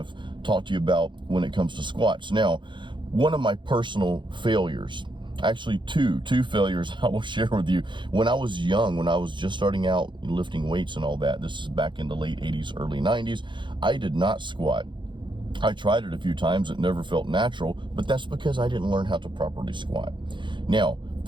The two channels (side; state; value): left; late; 0.23 ms